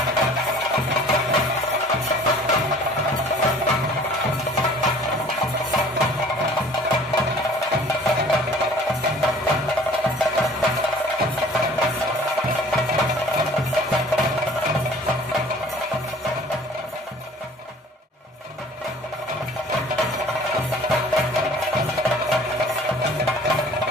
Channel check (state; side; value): normal; both; correlation 0.50